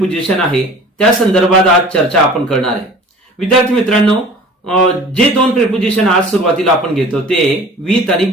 आहे त्या संदर्भात आज चर्चा आपण करणार आहे. विद्यार्थी मित्रांनो, जे दोन प्रेपोजिशन आज सुरुवातीला आपण घेतो ते विथ आणि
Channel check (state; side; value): normal; both; correlation 0.44